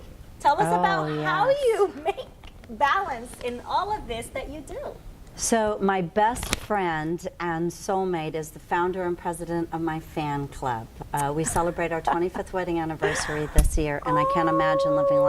Tell us about how you make balance in all of this that you do. So my best friend and soulmate is the founder and president of my fan club. We celebrate our 25th wedding anniversary this year, and I can't imagine living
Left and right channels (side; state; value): both; identical; correlation 1.00